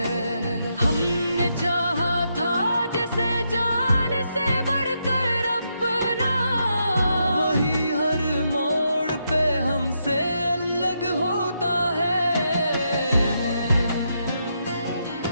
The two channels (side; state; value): both; inverted; correlation -0.81